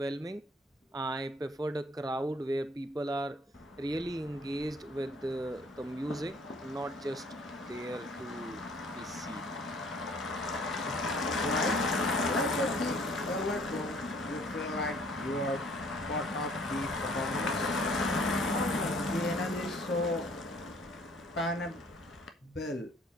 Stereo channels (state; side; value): normal; both; correlation 0.57